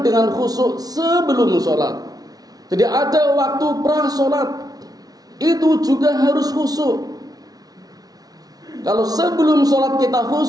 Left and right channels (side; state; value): left; late; 0.18 ms